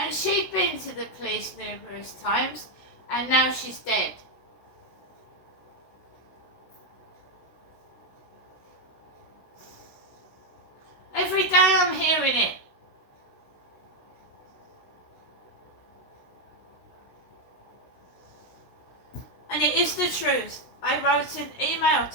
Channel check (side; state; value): right; late; 16 ms